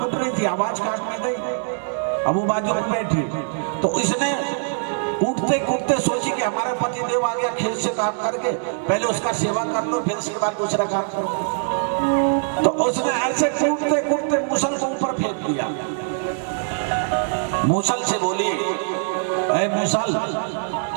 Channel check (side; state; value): left; silent; digital silence